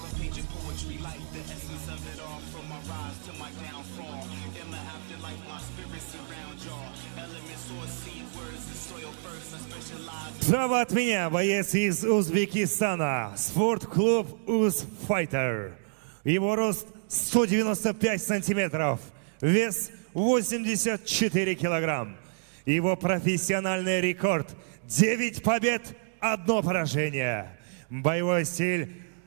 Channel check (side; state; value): left; silent; digital silence